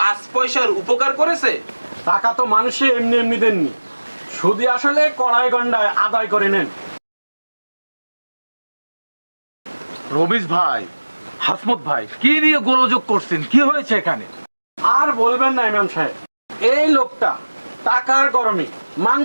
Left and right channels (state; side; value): inverted; both; correlation -1.00